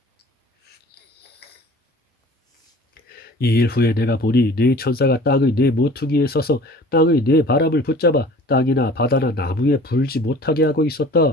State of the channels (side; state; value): both; normal; correlation 0.46